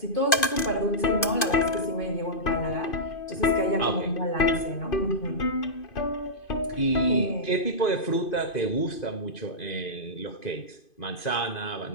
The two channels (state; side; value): late; right; 2.5 ms